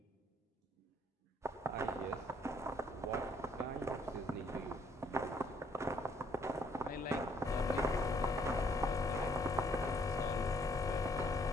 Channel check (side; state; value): both; normal; correlation 0.65